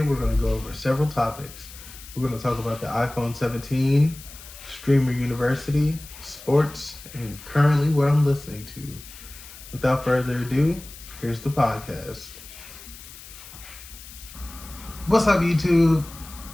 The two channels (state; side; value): noise; left; hiss, 17 dB below the sound